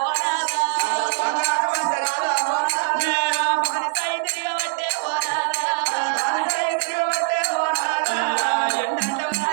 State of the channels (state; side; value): silent; left; 64 dB below the other